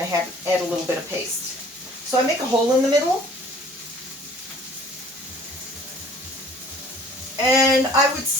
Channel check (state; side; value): normal; both; correlation 0.52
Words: to add a little bit of paste. So I make a hole in the middle. And I would